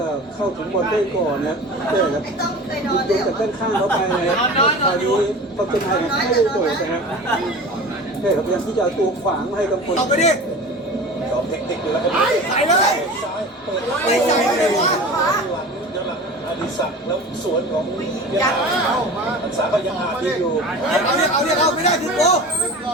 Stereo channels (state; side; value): normal; both; correlation 0.36